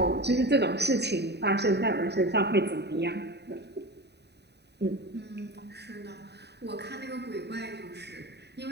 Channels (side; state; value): left; late; 0.49 ms